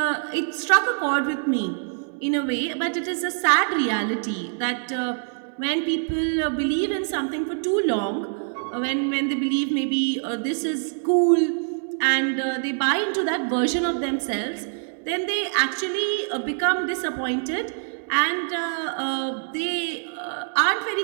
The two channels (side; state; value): left; silent; 62 dB below the other